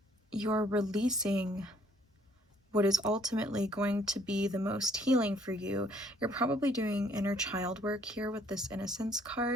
you're releasing what is ultimately going to be the most healing for you. You're probably doing inner child work here with this innocence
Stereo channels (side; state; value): both; normal; correlation 0.62